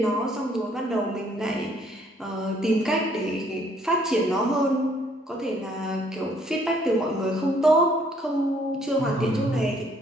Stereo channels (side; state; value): both; normal; correlation 0.64